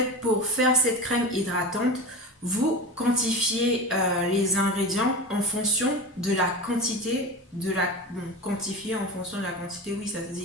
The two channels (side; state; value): both; normal; correlation 0.28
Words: pour faire cette crème hydratante, vous quantifiez les ingrédients en fonction de la quantité quantifier en fonction de la quantité, oui ça se